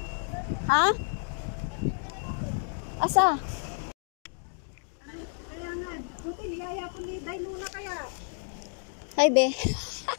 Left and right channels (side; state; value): right; silent; 58 dB below the other